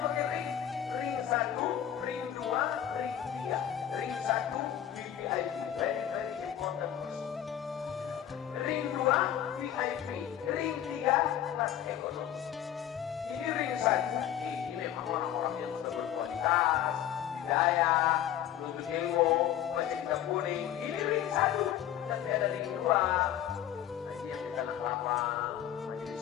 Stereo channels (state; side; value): quieter; right; 10.8 dB